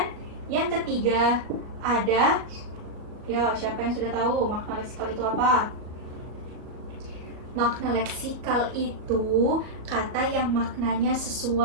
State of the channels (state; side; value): late; left; 38 ms